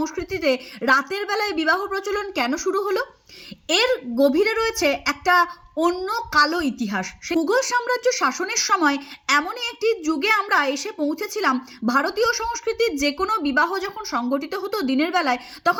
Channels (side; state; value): both; identical; correlation 1.00